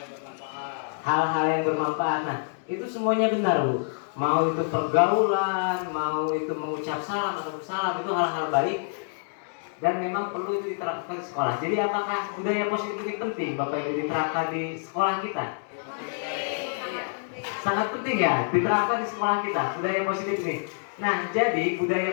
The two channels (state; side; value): silent; right; digital silence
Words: Hal-hal yang bermanfaat. Nah, itu semuanya benar, Bu. Mau itu pergaulan, mau itu mengucap salam atau bersalam, itu hal-hal baik dan memang perlu itu diterapkan di sekolah. Jadi apakah budaya positif ini penting Bapak Ibu diterapkan di sekolah kita? Sangat penting ya, diterapkan di sekolah kita budaya positif ini. Nah, jadi